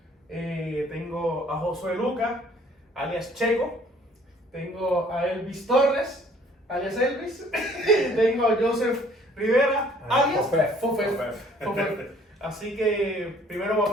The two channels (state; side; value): normal; both; correlation 0.58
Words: Tengo a Josué Lucas, alias Checo. Tengo a Elvis Torres, alias Elvis. Tengo a Joseph Rivera, alias Fofet. Así que primero voy a